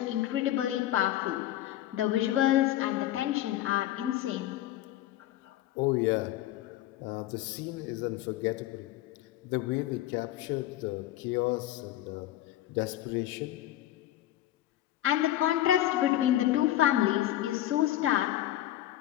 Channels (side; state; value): right; quieter; 13.7 dB